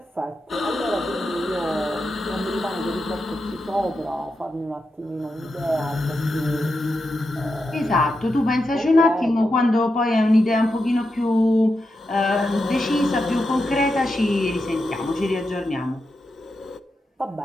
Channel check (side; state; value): both; normal; correlation 0.87